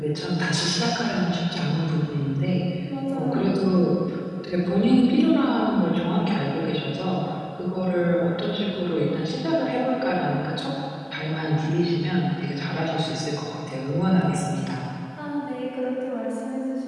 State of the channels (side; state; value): both; identical; correlation 1.00